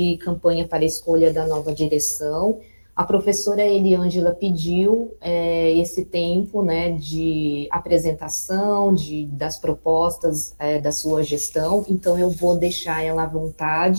campanha para a escolha da nova direção. A professora Eliângela pediu esse tempo, né, de apresentação das propostas da sua gestão, então eu vou deixar ela à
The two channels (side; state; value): both; inverted; correlation -1.00